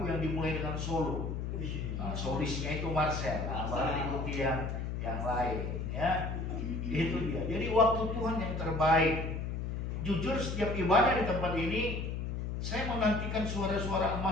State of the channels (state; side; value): noise; left; hum, 3 dB below the sound